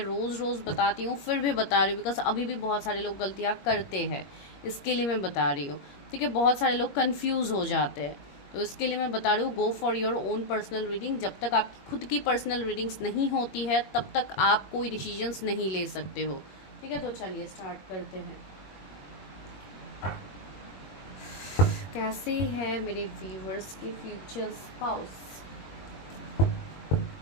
रोज़ रोज़ बताती हूँ, फिर भी बता रही हूँ, बिकॉज अभी भी बहुत सारे लोग गलतियाँ करते हैं, इसके लिए मैं बता रही हूँ। ठीक है, बहुत सारे लोग कंफ्यूज हो जाते हैं, तो इसके लिए मैं बता रही हूँ, go for your own personal reading. जब तक आपकी खुद की पर्सनल रीडिंग्स नहीं होती है, तब तक आप कोई डिसीजंस नहीं ले सकते हो। ठीक है, तो चलिए स्टार्ट करते हैं। कैसे है मेरे व्यूअर्स के फ्यूचर स्पाउस,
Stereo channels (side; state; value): right; late; 21 ms